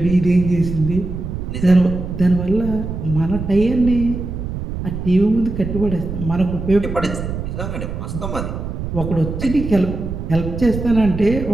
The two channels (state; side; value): noise; right; rumble, 6 dB below the sound